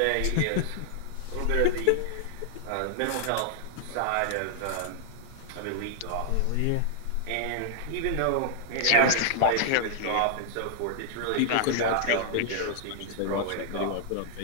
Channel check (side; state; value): both; different; correlation -0.01